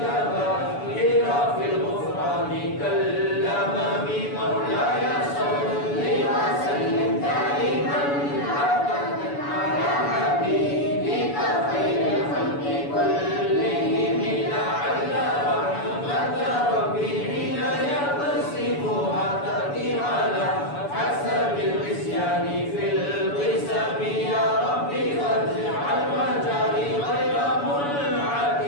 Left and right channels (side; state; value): right; late; 7.0 ms